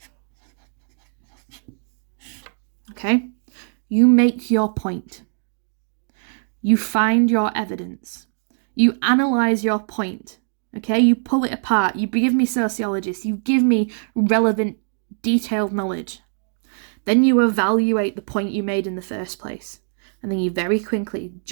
Okay? You make your point. You find your evidence. You analyse your point, okay? You pull it apart. You give me sociologists. You give me relevant, detailed knowledge. Then you evaluate the point you made in the first place. And then you very quickly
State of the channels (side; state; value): left; silent; digital silence